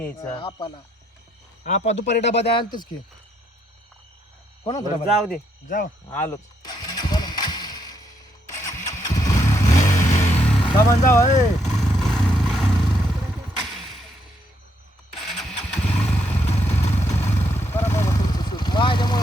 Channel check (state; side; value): normal; both; correlation 0.75